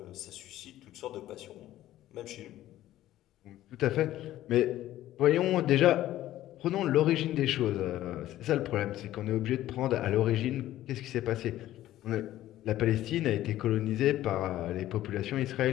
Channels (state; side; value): quieter; right; 14.0 dB